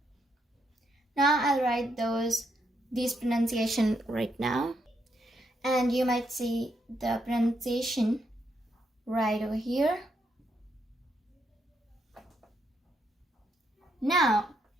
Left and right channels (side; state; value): both; normal; correlation 0.78